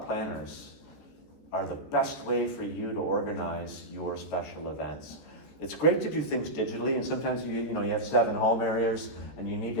planners are the best way for you to organize your special events. It's great to do things digitally, and sometimes you have 7 home areas and you need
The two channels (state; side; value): late; right; 14 ms